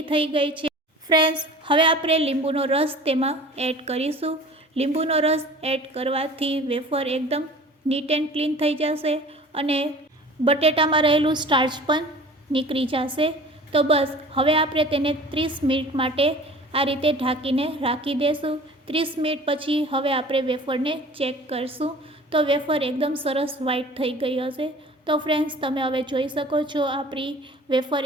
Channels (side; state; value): both; normal; correlation 0.43